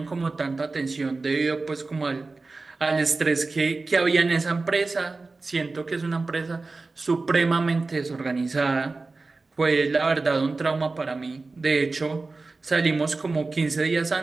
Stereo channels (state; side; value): quieter; left; 3.7 dB